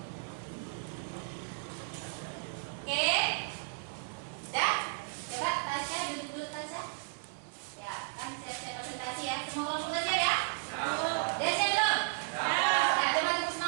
Oke. Dah? Coba Tasya duduk dulu Tasya. Ya, kan siap-siap presentasi ya. Semua kelompok udah siap ya? Udah siap belum? Ya, coba tepuk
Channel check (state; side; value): silent; left; digital silence